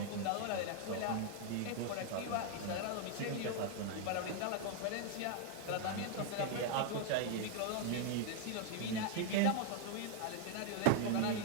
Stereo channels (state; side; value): different; both; correlation 0.00